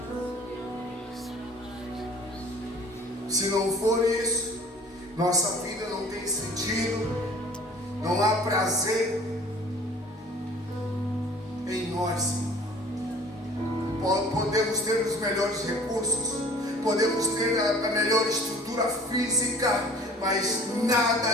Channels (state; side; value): normal; both; correlation 0.49